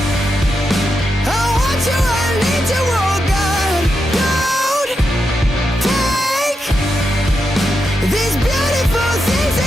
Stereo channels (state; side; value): normal; both; correlation 0.86